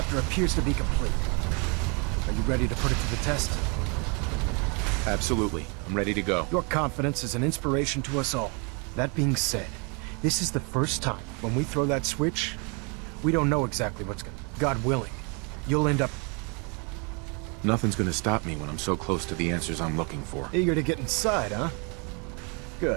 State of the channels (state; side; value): quieter; left; 33.8 dB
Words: appears to be complete. Are you ready to put it to the test? Absolutely. I'm ready to go. Your confidence is an inspiration to us all. That being said, this is the first time when we throw that switch, we don't know exactly what's gonna... God willing, you'll end up... Nothing's gonna stop me when I'm so close to the answers I'm looking for. Eager to get inside, huh?